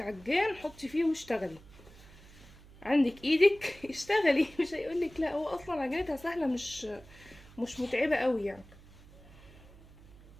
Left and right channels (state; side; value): noise; right; hum, 21 dB below the sound